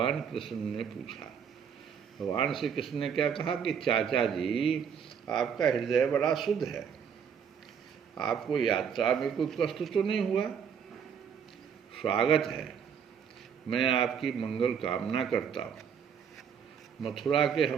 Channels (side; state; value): left; quieter; 7.4 dB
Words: कृष्ण ने पूछा। भगवान श्री कृष्ण ने क्या कहा कि चाचा जी, आपका हृदय बड़ा शुद्ध है। आपको यात्रा में कोई कष्ट तो नहीं हुआ। स्वागत है। मैं आपकी मंगल कामना करता हूँ। मथुरा के